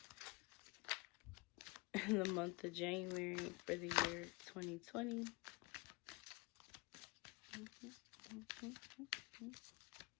in the month of January for the year 2020?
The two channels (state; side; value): quieter; right; 24.7 dB